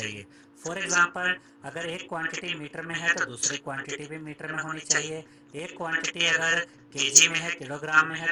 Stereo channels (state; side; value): identical; both; correlation 1.00